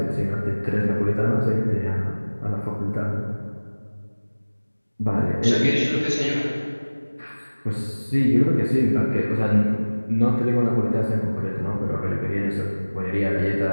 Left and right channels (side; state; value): both; inverted; correlation -1.00